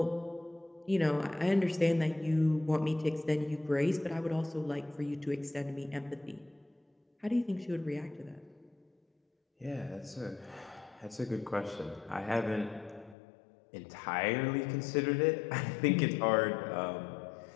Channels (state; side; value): drops out; right; at 13.2 s